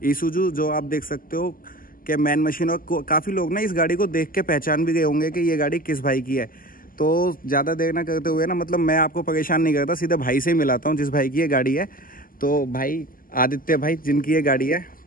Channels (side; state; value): right; late; 0.41 ms